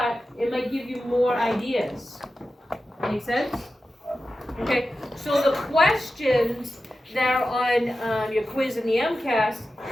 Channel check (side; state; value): both; normal; correlation 0.92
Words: it might give you more ideas. Make sense? Okay, so the questions that are on your quiz in the MCAS,